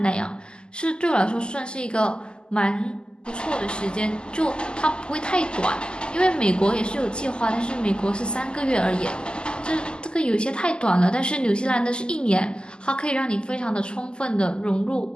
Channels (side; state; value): right; late; 0.048 ms